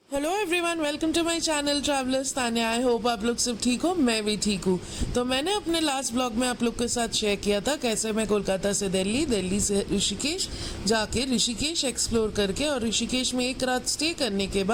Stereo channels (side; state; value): both; identical; correlation 1.00